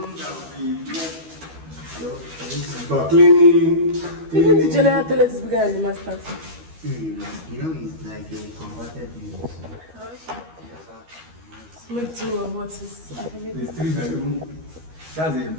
But cleaning. Even the general toilet is bigger than the master's. you know, it's like a converted unit. So Okay. Make two of what is available. It's 3 bedroom. That's a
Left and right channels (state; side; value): late; left; 12 ms